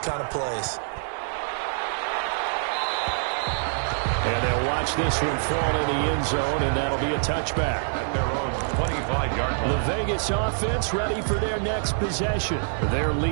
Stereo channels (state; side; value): silent; left; digital silence